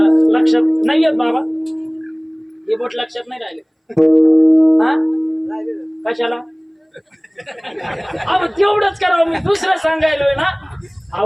लक्षात नाही येत बाबा, हे बोट लक्षात नाही राहिले. हा कशाला? अहो तेवढंच करावं, मी दुसरं सांगायलोय ना.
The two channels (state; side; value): identical; both; correlation 1.00